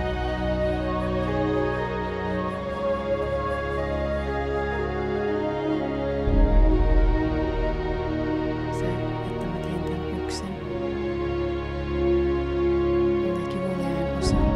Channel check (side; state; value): both; identical; correlation 1.00